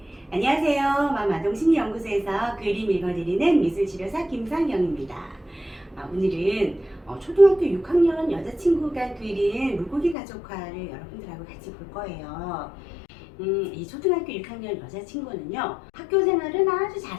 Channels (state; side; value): drops out; right; at 10.2 s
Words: 안녕하세요. 마마동심리연구소에서 그림 읽어드리는 미술치료사 김상경입니다. 오늘은 초등학교 6학년 여자친구가 그린 물고기 가족화를 여러분들하고 같이 볼 거예요. 이 초등학교 6학년 여자친구는요, 학교 생활은 아주